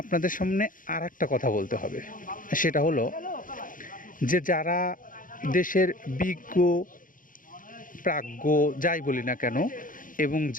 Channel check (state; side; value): late; right; 0.39 ms